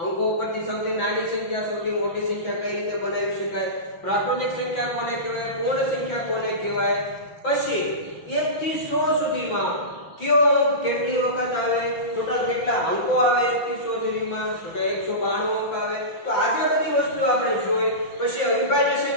અંકો ઉપરથી સૌથી નાની સંખ્યા સૌથી મોટી સંખ્યા કઈ રીતે બનાવી શકાય, પ્રાકૃતિક સંખ્યા કોને કહેવાય, પૂર્ણ સંખ્યા કોને કહેવાય, પછી 1 થી 100 સુધીમાં કયો અંક કેટલી વખત આવે, ટોટલ કેટલા અંકો આવે 1 થી 100 સુધીમાં, તો કે 192 અંક આવે। તો આજે બધી વસ્તુ આપણે જોઈ। પછી અવિભાજ્ય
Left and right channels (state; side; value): late; right; 5.9 ms